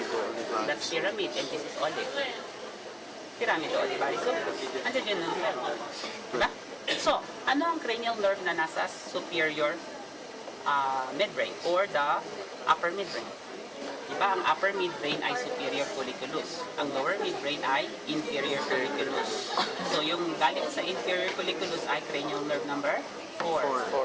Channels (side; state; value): both; identical; correlation 1.00